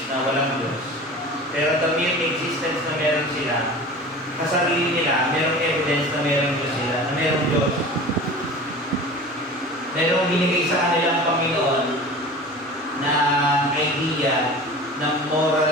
na walang Diyos. Pero the mere existence na meron sila, sa sarili nila, merong evidence na meron Diyos sila, na merong Diyos. Merong binigay sa kanilang Panginoon na idea ng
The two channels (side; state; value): both; normal; correlation 0.37